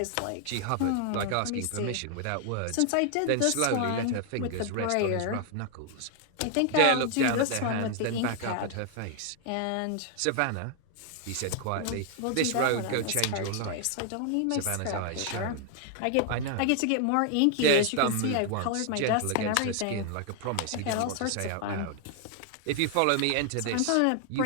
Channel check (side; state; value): both; different; correlation 0.00